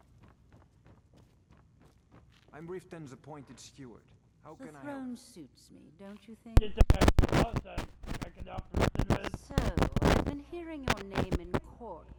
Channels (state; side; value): identical; both; correlation 1.00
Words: I'm Riften's appointed steward. How The can I throne help? suits me, don't you think? So, I've been hearing your name in court